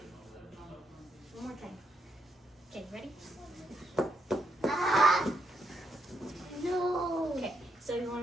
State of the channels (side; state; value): both; normal; correlation 0.77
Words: One more time. Okay, ready? No. Okay, so you